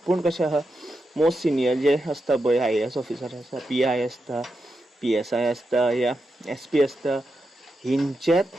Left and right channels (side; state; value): both; normal; correlation 0.87